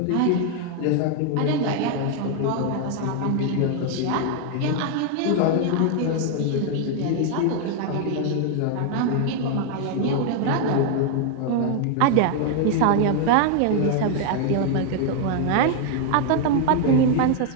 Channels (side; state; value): both; different; correlation 0.00